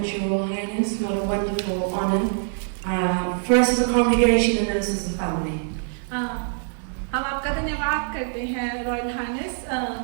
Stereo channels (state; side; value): silent; left; digital silence